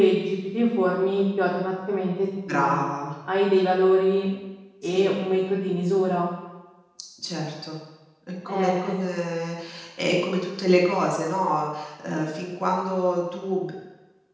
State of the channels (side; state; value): both; identical; correlation 1.00